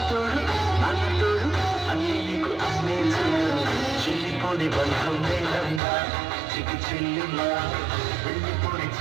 అన్నతోడు అన్ని నీకు అన్నే చెల్లిపోని బంధం నేనమ్మా చికి చెల్లిమ్మా వెళ్ళిపోని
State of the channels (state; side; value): drops out; left; at 5.8 s